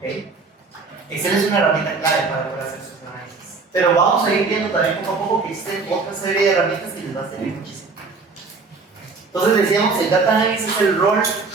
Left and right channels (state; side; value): quieter; left; 4.3 dB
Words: Excel es una herramienta clave para poder hacer sus análisis. Pero vamos a ir viendo también poco a poco que existen otra serie de herramientas que les va a servir muchísimo. Entonces decíamos, el data analysis es el rol